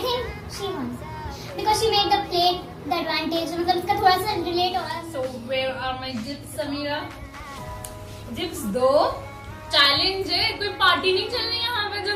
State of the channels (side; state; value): both; identical; correlation 1.00